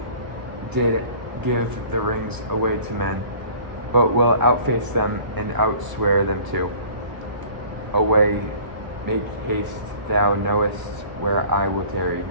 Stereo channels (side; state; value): left; late; 1.0 ms